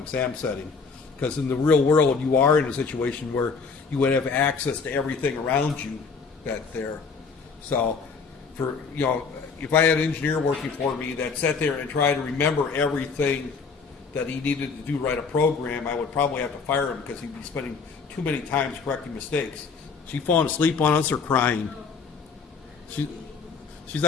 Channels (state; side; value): quieter; right; 5.1 dB